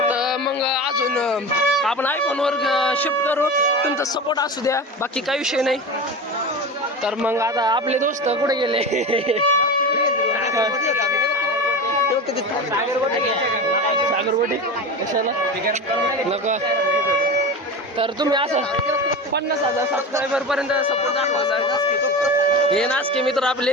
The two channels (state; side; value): normal; both; correlation 0.27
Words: मग अजून आपण आयफोनवर शिफ्ट करू, तुमचा सपोर्ट असू द्या, बाकी काही विषय नाही. तर मग आता आपले दोस्त कुठे गेले? सागरवडी कशाला नका. तर तुम्ही असं 50,000 सबस्क्रायबर पर्यंत सपोर्ट दाखवा. हे नाचके मित्र